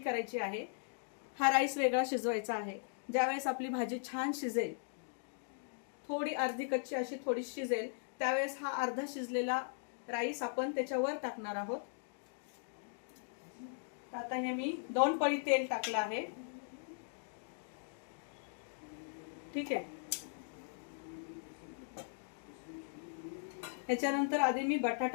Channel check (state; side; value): silent; right; digital silence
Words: आहे, हा राईस वेगळा शिजवायचा आहे। ज्यावेळेस आपली भाजी छान शिजेल, थोडी अर्धी कच्ची अशी थोडी शिजेल, त्यावेळेस हा अर्धा शिजलेला राईस आपण त्याच्यावर टाकणार आहोत। आता हे मी 2 पळी तेल टाकलं आहे। ठीक आहे। त्याच्यानंतर आधी मी